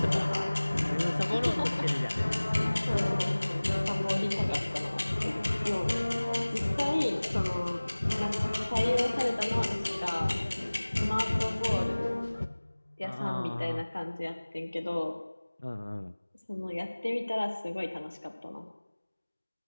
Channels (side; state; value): both; inverted; correlation -1.00